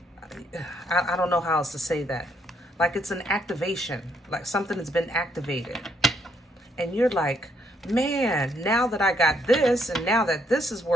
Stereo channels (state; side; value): normal; both; correlation 0.72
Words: I don't know how else to say that. Like it's an activation, like something that's been activated. And you're like, man, now that I got this, and now that this is